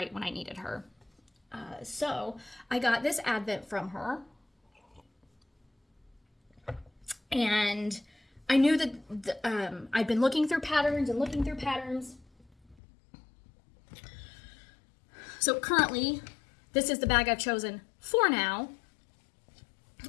when I needed her. So I got this Advent from her, and I knew that I'd been looking through patterns. So currently, this is the bag I've chosen for now.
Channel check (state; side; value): drops out; right; at 12.8 s